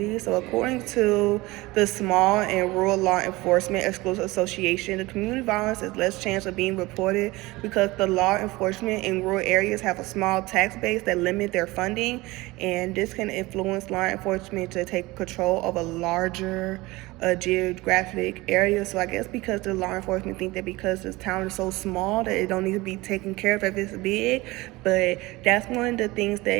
So according to the Small and Rural Law Enforcement Exclusive Association, the community violence has less chance of being reported because the law enforcement in rural areas have a small tax base that limit their funding, and this can influence law enforcement to take control of a larger geographic area. So I guess because the law enforcement think that because this town is so small that it don't need to be taken care of if it's big, but that's one of the things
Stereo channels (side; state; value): left; quieter; 21.1 dB